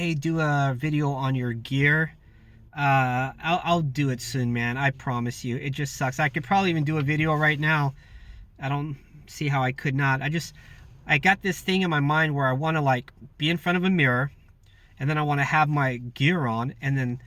do a video on your gear. I'll do it soon, man. I promise you. It just sucks. I could probably even do a video right now. I don't see how I could not. I got this thing in my mind where I want to like be in front of a mirror, and then I want to have my gear on and then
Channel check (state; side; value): identical; both; correlation 1.00